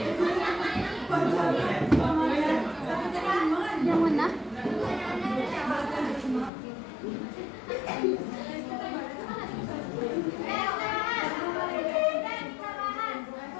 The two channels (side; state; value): right; drops out; at 6.5 s